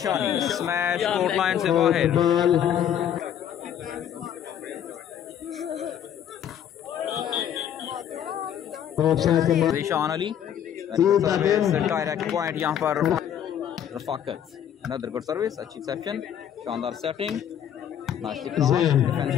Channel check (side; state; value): right; quieter; 9.7 dB